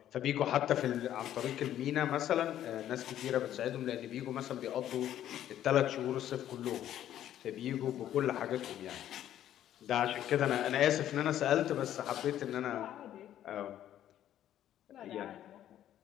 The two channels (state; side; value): quieter; right; 11.6 dB